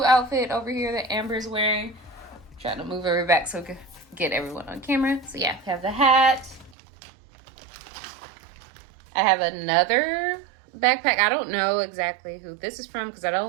outfit over here that Amber's wearing. I'm trying to move her back so we can get everyone on camera. So yeah, we have the hat. I have another backpack. I don't know exactly who this is from because I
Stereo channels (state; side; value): drops out; left; at 6.8 s